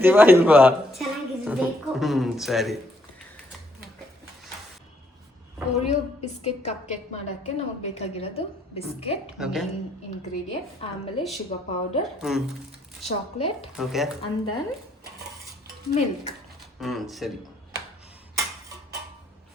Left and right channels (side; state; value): both; normal; correlation 0.70